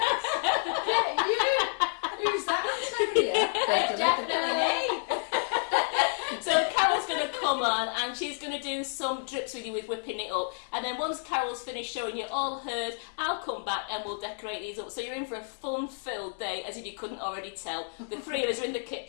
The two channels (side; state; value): right; silent; digital silence